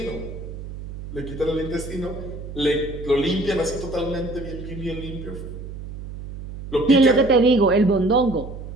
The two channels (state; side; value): noise; right; hum, 11 dB below the sound